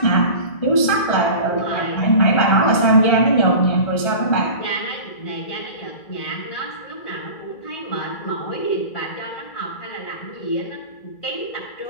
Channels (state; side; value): late; right; 1.4 ms